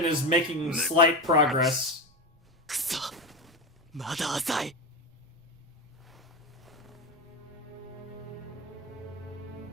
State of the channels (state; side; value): noise; right; rumble, 30 dB below the sound